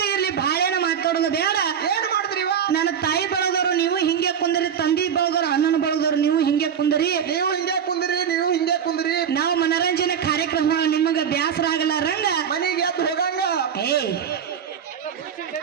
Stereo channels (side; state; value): left; quieter; 8.0 dB